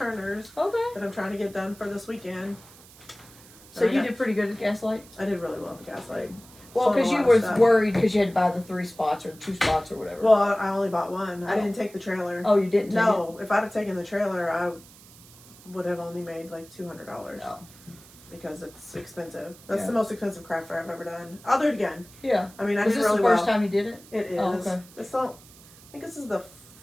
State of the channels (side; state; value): right; noise; hiss, 22 dB below the sound